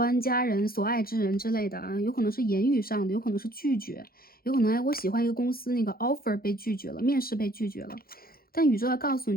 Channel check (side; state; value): right; late; 0.43 ms